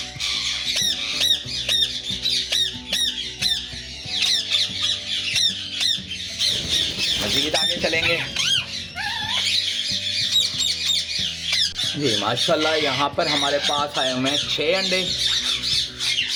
मज़ीद आगे चलेंगे जी। माशाल्लाह यहाँ पर हमारे पास आए हुए हैं 6 अंडे।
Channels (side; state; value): both; identical; correlation 1.00